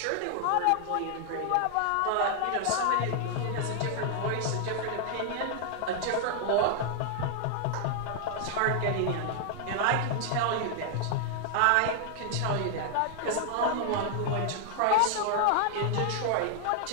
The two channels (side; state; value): both; different; correlation 0.00